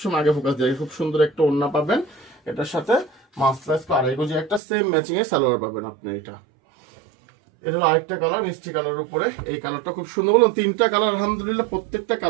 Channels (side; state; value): left; drops out; at 4.6 s